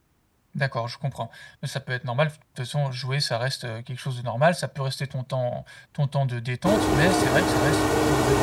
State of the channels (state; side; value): identical; both; correlation 1.00